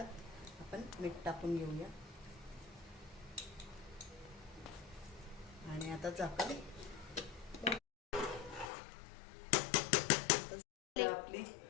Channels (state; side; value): drops out; right; at 8.7 s